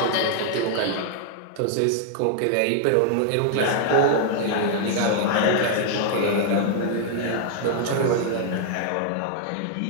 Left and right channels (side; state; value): both; different; correlation 0.00